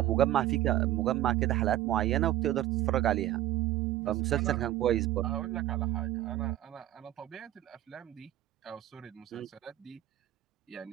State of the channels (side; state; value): left; quieter; 14.0 dB